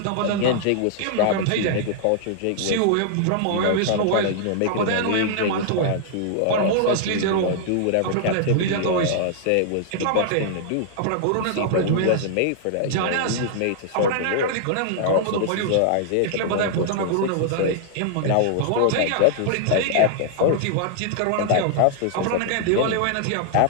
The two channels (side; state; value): both; different; correlation -0.01